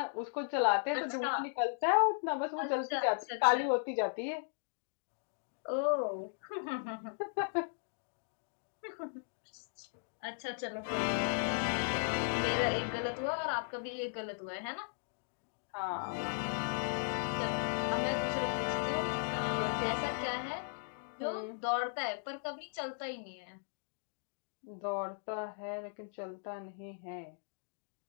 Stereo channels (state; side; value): silent; right; digital silence